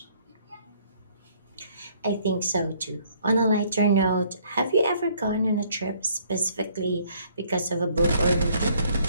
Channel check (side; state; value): both; inverted; correlation -0.63